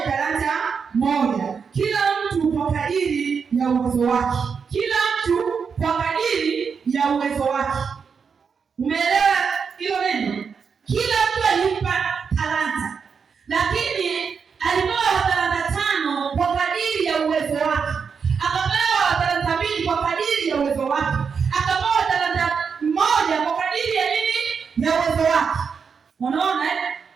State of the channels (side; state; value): left; quieter; 6.0 dB